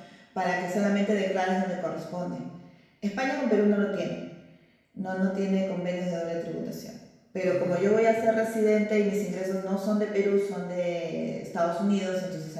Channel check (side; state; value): both; identical; correlation 1.00